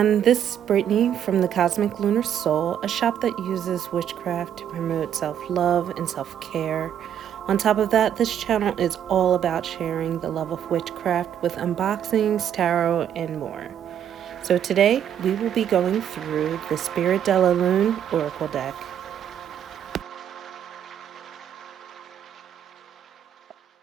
this is Brittany from the Cosmic Lunar Soul, a shop that uses witchcraft to promote self-love and self-care. On top of that, this channel is all about sharing the love of witchcraft with unboxings, tarot, and more. So today, we will be going through the Spirit de la Lune Oracle deck.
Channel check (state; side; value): quieter; left; 9.6 dB